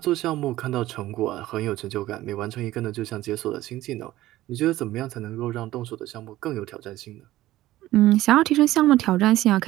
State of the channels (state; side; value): quieter; left; 15.8 dB